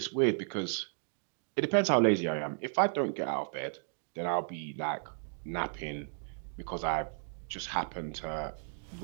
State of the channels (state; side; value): silent; left; digital silence